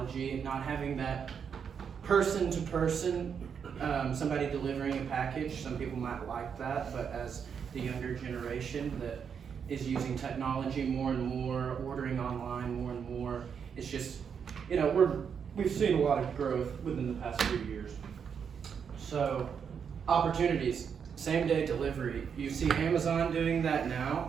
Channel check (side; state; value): left; quieter; 7.0 dB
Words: not having that person to person, somebody delivering a package. Some people might like that, but as the younger generation that is using technology more and more, ordering online more and more, it's just, we've seen a lot of growth within the past few years. So opportunities, same day delivery. You see Amazon doing that